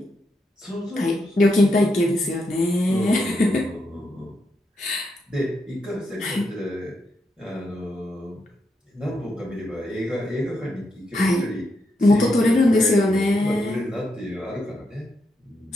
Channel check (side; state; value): both; normal; correlation 0.82